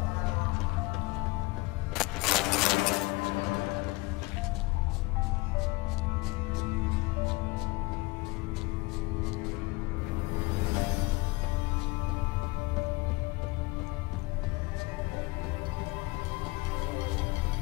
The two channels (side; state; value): right; quieter; 23.3 dB